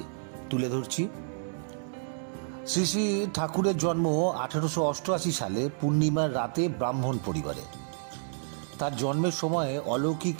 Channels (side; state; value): left; silent; digital silence